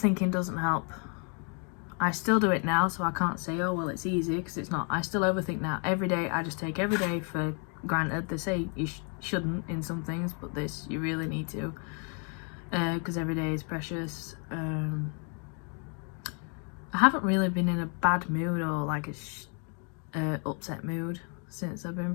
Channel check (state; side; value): quieter; right; 39.2 dB